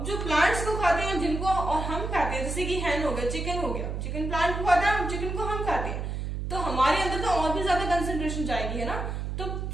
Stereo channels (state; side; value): noise; right; hum, 4 dB below the sound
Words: जो प्लांट्स को खाते हैं जिनको और हम खाते हैं, जैसे कि हैन हो गया, चिकन हो गया, चिकन प्लांट को खाता है, चिकन को हम खाते हैं, तो हमारे अंदर तो और भी ज्यादा कंसेंट्रेशन जाएगी, है ना। तो